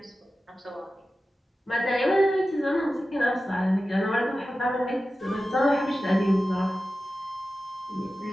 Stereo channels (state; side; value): normal; both; correlation 0.94